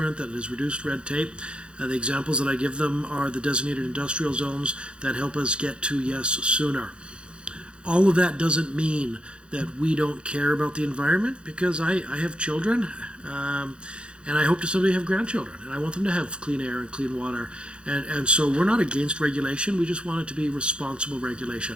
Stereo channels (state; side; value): late; left; 0.055 ms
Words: that has reduced red tape. The examples that I give them are the designated industrial zones that help us get to yes sooner. All of that doesn't mean that we don't care about the environment, because I have children, and I hope to someday have grandchildren, and I want them to have clean air and clean water. And so we're not against regulation, we just want it to be responsible regulation.